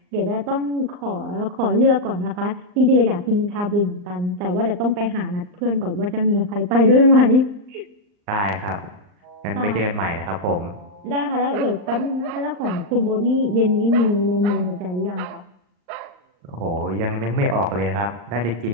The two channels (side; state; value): left; late; 39 ms